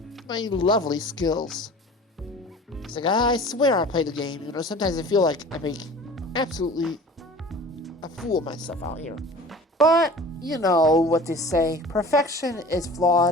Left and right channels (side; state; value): both; normal; correlation 0.42